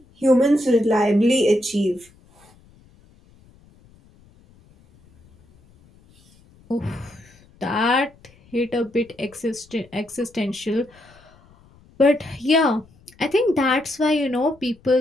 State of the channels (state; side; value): noise; left; rumble, 29 dB below the sound